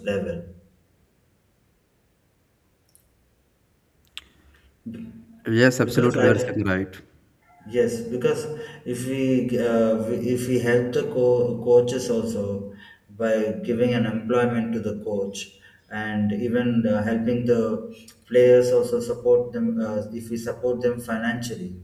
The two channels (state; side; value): identical; both; correlation 1.00